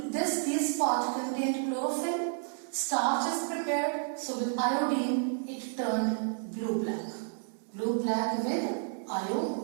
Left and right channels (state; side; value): silent; left; 57 dB below the other